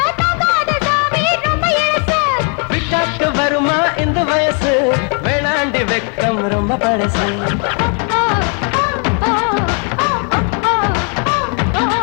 தாங்காத சாமி ரொம்ப இழுசு விட்டாக்கு வருமா இந்த வயசு வேணாண்டி வெக்கம் ரொம்ப பழசு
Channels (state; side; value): quieter; right; 39.5 dB